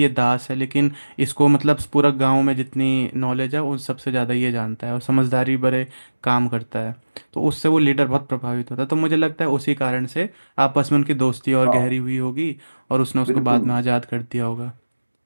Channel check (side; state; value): both; inverted; correlation -1.00